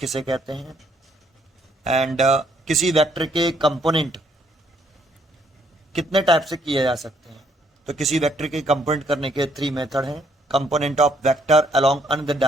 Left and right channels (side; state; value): both; normal; correlation 0.69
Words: कहते हैं एंड किसी वेक्टर के कंपोनेंट कितने टाइप से किए जा सकते हैं। तो किसी वेक्टर के कंपोनेंट करने के 3 मेथड हैं। Component of vector along another